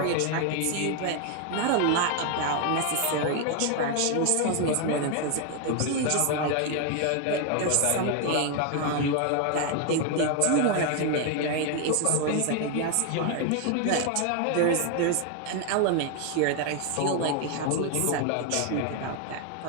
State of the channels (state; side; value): different; both; correlation 0.01